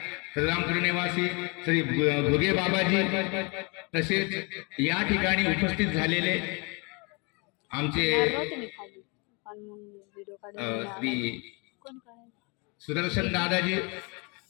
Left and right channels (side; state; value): right; quieter; 30.7 dB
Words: श्रीरामपूर निवासी श्री भोगे बाबाजी, तसेच या ठिकाणी उपस्थित झालेले आमचे श्री सुदर्शन दादाजी,